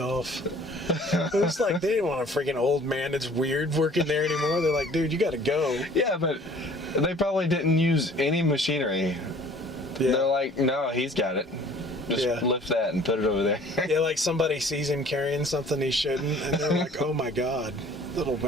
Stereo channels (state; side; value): normal; both; correlation 0.51